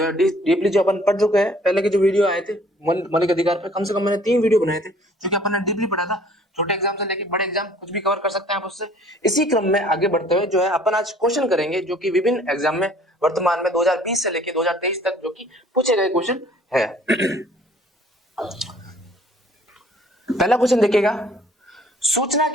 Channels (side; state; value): both; normal; correlation 0.55